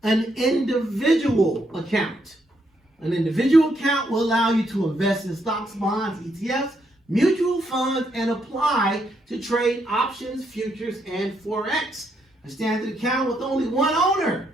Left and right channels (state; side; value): normal; both; correlation 0.76